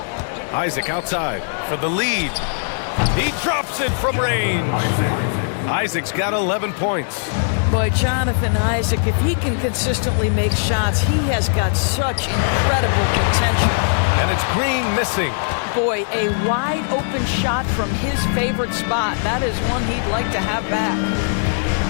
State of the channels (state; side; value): silent; right; 65 dB below the other